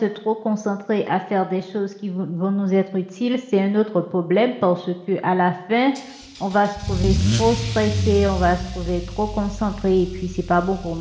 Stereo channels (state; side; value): identical; both; correlation 1.00